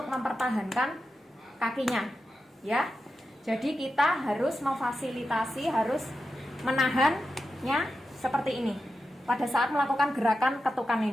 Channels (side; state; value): both; normal; correlation 0.90